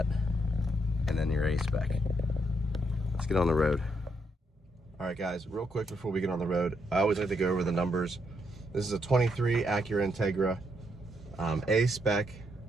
And then your A-Spec. Let's get on the road. All All right, guys, real quick before we get on the road, I always like to go over the numbers. This is a 23 Acura Integra, A-Spec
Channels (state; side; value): normal; both; correlation 0.77